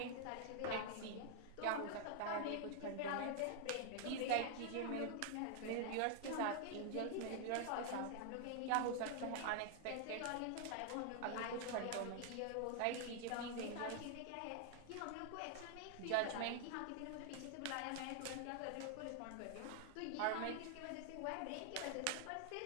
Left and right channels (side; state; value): both; different; correlation 0.00